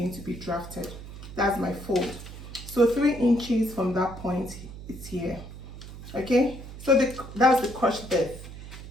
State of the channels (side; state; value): right; noise; hum, 13 dB below the sound